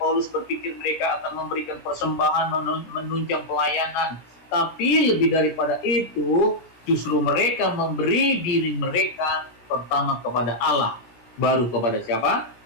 berpikir mereka akan memberikan persembahan menunjang pelayanan. Tapi lebih daripada itu, justru mereka memberi diri mereka pertama kepada Allah, baru kepada siapa?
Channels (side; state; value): right; late; 17 ms